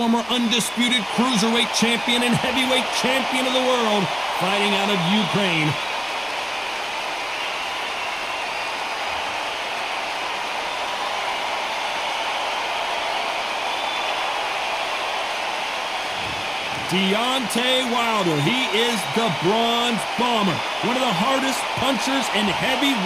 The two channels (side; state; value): right; noise; rumble, 26 dB below the sound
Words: undisputed cruiserweight champion and heavyweight champion of the world, fighting out of Ukraine. Deontay Wilder, he is the Bronze Bomber, one of the hardest punchers in